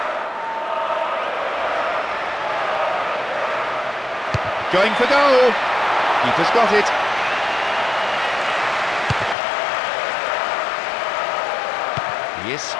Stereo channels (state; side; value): drops out; right; at 9.3 s